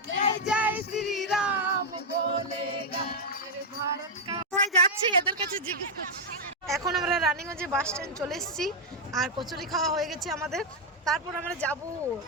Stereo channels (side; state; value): both; normal; correlation -0.01